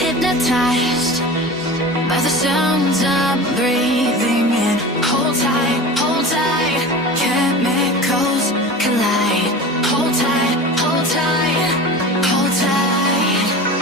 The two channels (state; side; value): normal; both; correlation 0.33